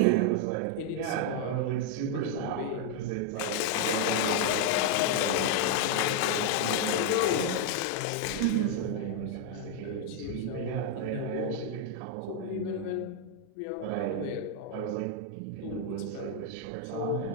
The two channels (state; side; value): different; both; correlation 0.00